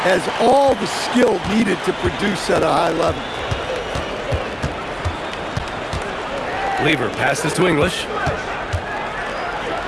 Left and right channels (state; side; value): identical; both; correlation 1.00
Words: Has all the skill needed to produce at a high level. Lever passes to English.